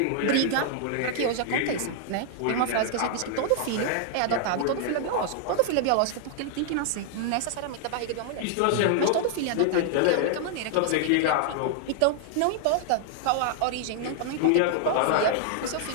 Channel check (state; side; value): different; both; correlation 0.00